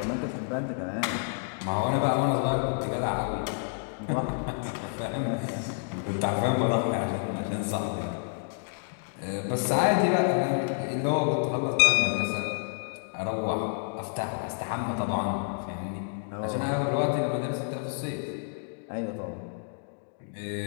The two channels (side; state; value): right; silent; digital silence